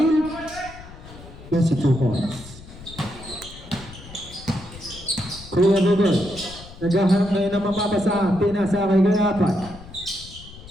yes, 2 points. Kuya Bogoy, naghahanap ngayon ng mapapasahan. Pinasa kay Kuya Apay.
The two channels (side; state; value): left; noise; rumble, 17 dB below the sound